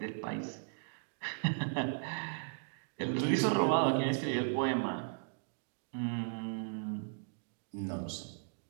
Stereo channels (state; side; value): silent; left; digital silence